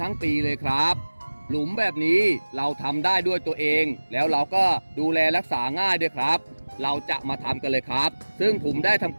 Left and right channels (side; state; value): both; inverted; correlation -1.00